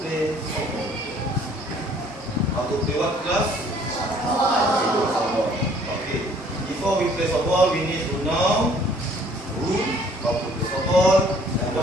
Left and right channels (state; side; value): normal; both; correlation 0.58